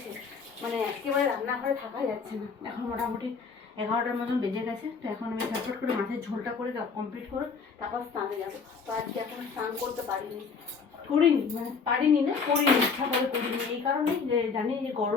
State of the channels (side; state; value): right; quieter; 5.3 dB